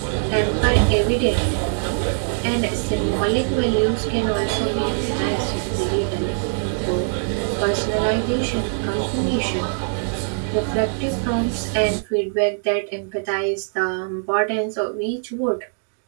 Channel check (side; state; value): left; silent; digital silence